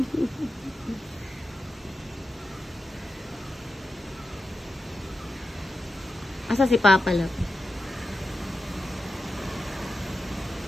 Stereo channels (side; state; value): both; normal; correlation 0.90